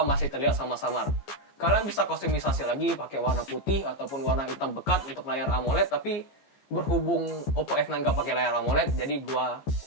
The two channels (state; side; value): late; right; 14 ms